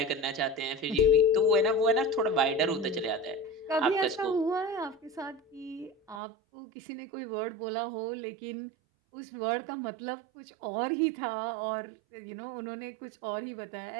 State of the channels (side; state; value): left; drops out; at 6.2 s